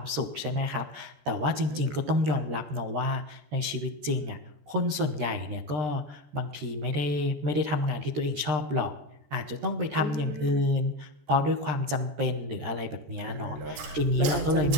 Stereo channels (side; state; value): left; late; 13 ms